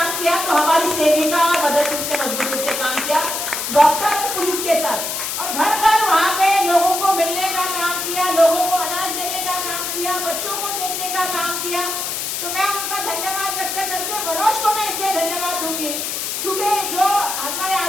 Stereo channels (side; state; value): left; noise; hiss, 3 dB below the sound